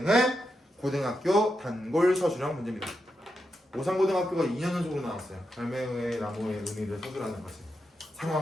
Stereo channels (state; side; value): normal; both; correlation 0.86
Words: 고등학교 단골 서술형 문제입니다. 오산고등학교가 2년 연속으로 나왔어요. 갈매의 나무의 의미를 서술하는 것을